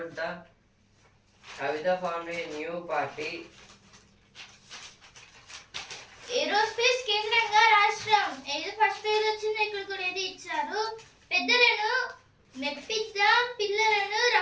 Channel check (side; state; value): both; identical; correlation 1.00